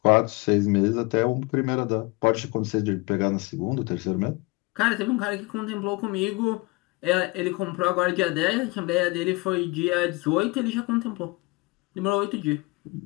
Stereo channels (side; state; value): right; quieter; 24.9 dB